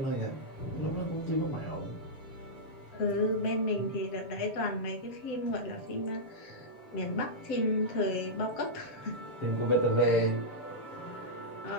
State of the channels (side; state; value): right; late; 7.7 ms